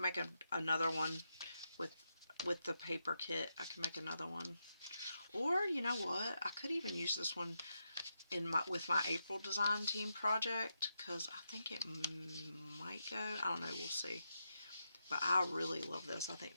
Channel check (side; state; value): both; inverted; correlation -0.85